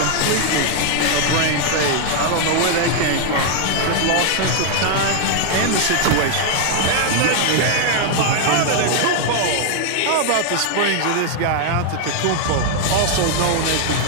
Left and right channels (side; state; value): both; different; correlation 0.00